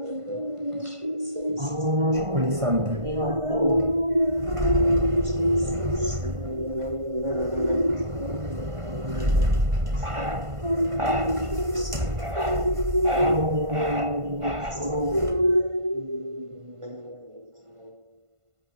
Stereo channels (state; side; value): late; left; 1.5 ms